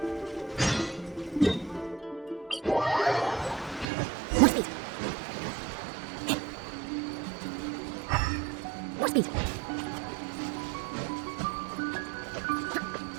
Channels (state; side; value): drops out; left; at 3.9 s